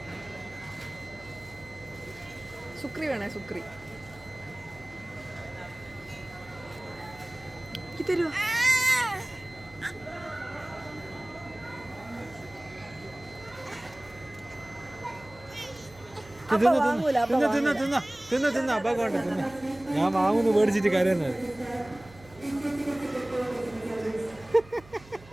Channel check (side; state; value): right; noise; hum, 22 dB below the sound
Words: സുക്രി വേണേ സുക്രി തരുവോ? ഞാൻ വാങ്ങുന്നു മേടിച്ചിട്ട് കരയുന്നത്.